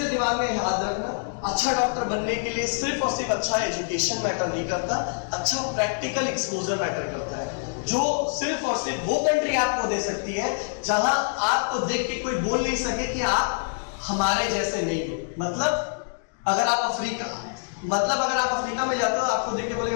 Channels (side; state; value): right; silent; digital silence